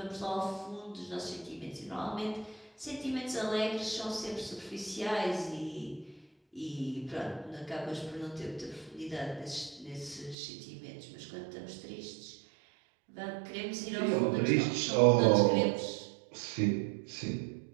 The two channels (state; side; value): drops out; left; at 10.4 s